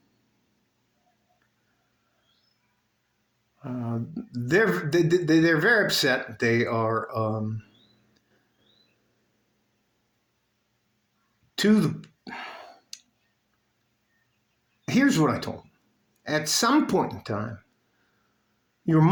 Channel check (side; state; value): both; identical; correlation 1.00